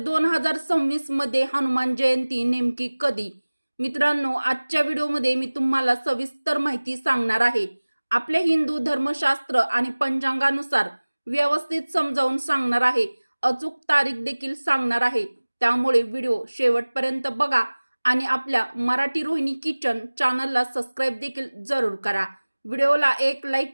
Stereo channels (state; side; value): inverted; both; correlation -1.00